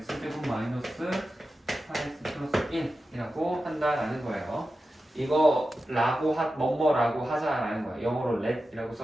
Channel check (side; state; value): both; normal; correlation 0.92